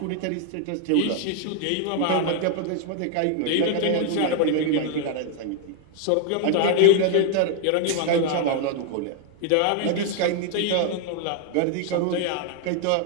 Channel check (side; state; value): both; different; correlation 0.00